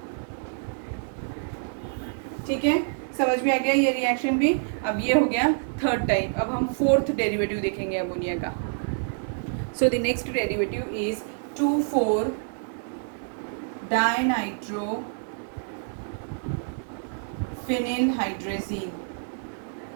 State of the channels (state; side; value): silent; left; 60 dB below the other